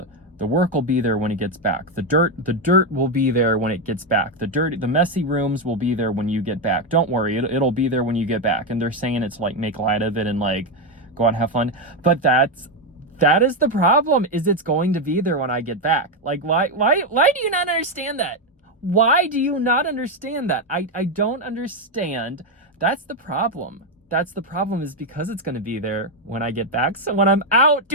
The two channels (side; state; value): both; normal; correlation 0.06